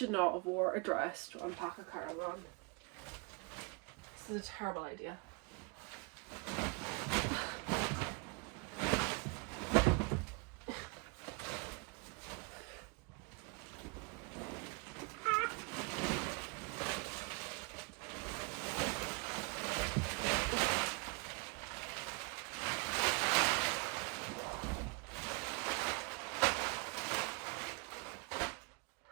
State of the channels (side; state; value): left; quieter; 31.2 dB